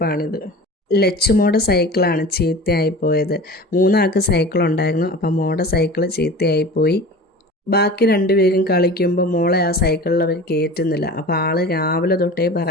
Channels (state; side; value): normal; both; correlation 0.37